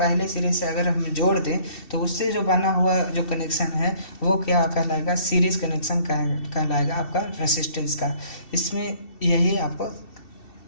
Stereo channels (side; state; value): right; late; 2.7 ms